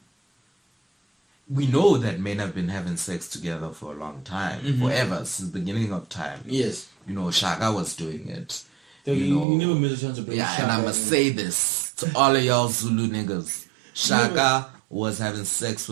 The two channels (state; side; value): drops out; left; at 9.5 s